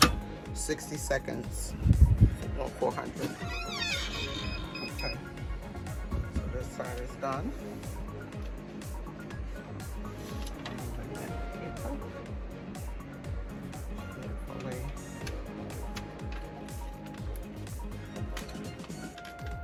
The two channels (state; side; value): identical; both; correlation 1.00